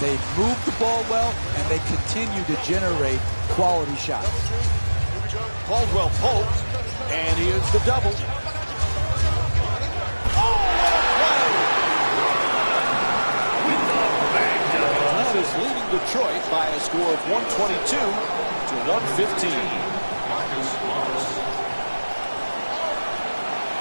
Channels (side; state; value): both; inverted; correlation -1.00